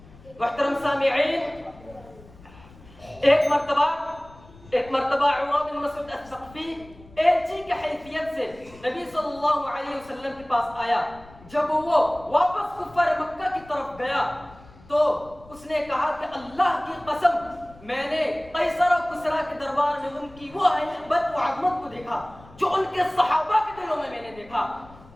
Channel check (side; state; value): left; noise; rumble, 22 dB below the sound